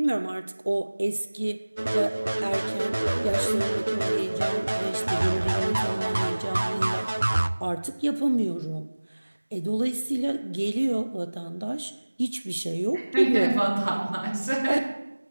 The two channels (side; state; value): both; inverted; correlation -1.00